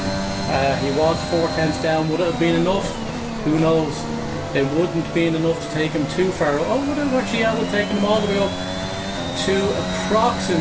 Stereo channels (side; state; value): both; identical; correlation 1.00